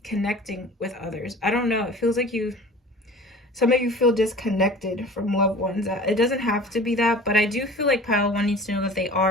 connecting with others. I don't know. It feels like some of you feel disconnected from loved ones. It doesn't have to be that, but I do feel like pile one needs to know that they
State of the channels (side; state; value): both; normal; correlation 0.42